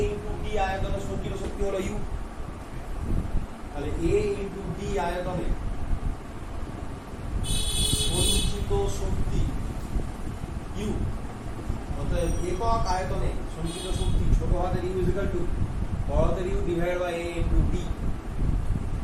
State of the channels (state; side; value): identical; both; correlation 1.00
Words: ইন্টু ডি আয়তনের সঞ্চিত শক্তি হলো ইউ। তাহলে a ইন্টু ডি আয়তনে সঞ্চিত শক্তি ইউ, অর্থাৎ একক আয়তনে সঞ্চিত শক্তি ছোট হাতের ইউ ইজ ইকুয়াল টু বড় হাতের U divided by a into D.